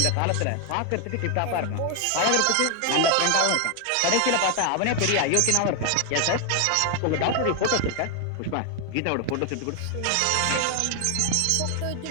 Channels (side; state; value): both; different; correlation 0.01